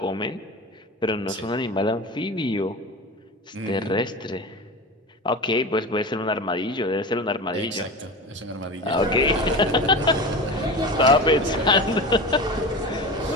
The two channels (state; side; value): normal; both; correlation 0.29